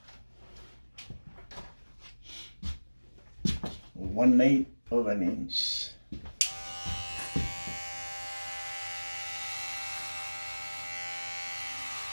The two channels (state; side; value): inverted; both; correlation -1.00